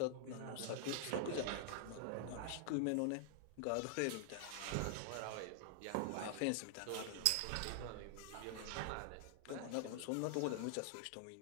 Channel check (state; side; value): different; both; correlation 0.00